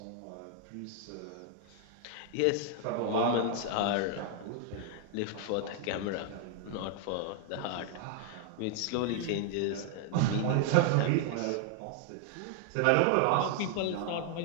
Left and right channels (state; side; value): different; both; correlation 0.00